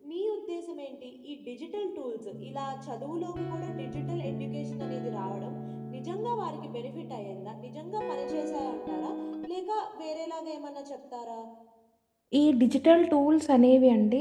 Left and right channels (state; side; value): identical; both; correlation 1.00